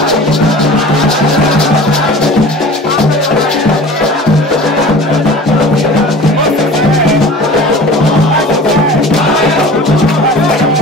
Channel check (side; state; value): both; normal; correlation 0.40